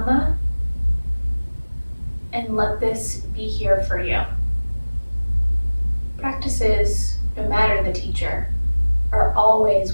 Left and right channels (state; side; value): inverted; both; correlation -1.00